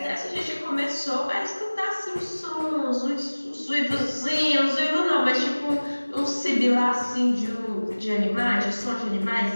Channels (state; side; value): inverted; both; correlation -1.00